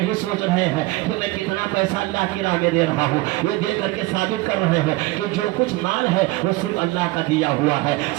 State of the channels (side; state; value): left; quieter; 20.4 dB